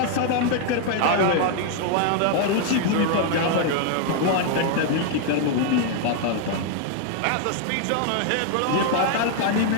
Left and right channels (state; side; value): different; both; correlation 0.00